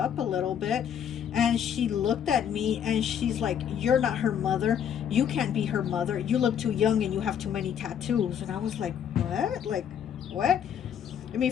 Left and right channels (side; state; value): right; quieter; 8.7 dB